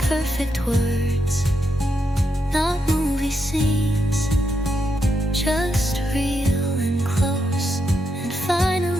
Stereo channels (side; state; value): both; normal; correlation 0.82